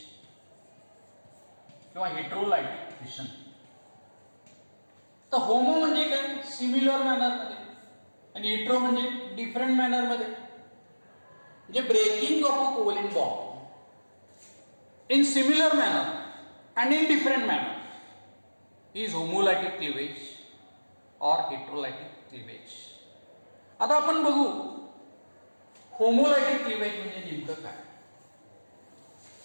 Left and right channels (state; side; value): inverted; both; correlation -1.00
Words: किंवा हेटेरोलायटिक फिशन. तर होमो म्हणजे काय, सिमिलर मॅनर मध्ये, आणि हेटेरो म्हणजे डिफरंट मॅनर मध्ये. म्हणजे breaking of a covalent bond in similar manner and in different manner is homolytic cleavage or heterolytic cleavage. आता आपण बघू होमोलायटिक क्लिवेज म्हणजे नेमकं काय.